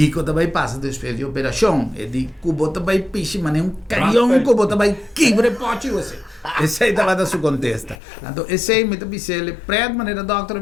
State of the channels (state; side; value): drops out; right; at 8.0 s